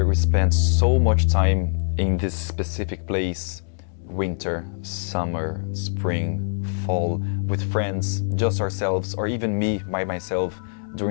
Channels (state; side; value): silent; right; digital silence